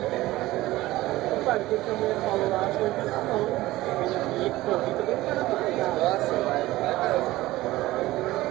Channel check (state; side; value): quieter; left; 17.5 dB